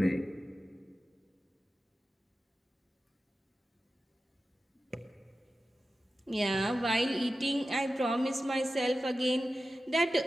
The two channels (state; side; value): normal; both; correlation 0.93